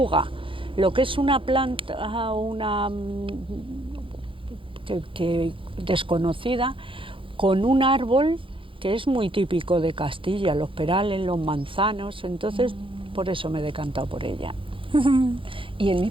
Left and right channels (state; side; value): late; left; 0.25 ms